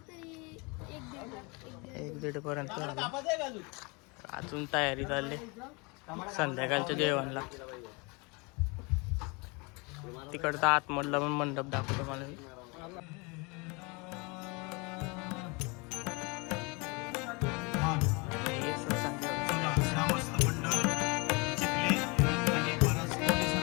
1-1:30 पर्यंत झालं. अजून तयारी चालली संध्याकाळच्या जेवणला. तिकडचा आतमधला पण मंडप दाखवतो मला.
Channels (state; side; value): quieter; right; 29.0 dB